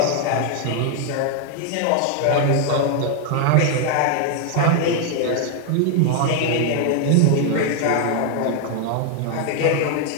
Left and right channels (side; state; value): both; different; correlation 0.00